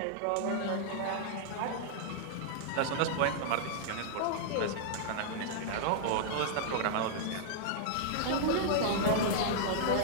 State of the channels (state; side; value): different; both; correlation -0.01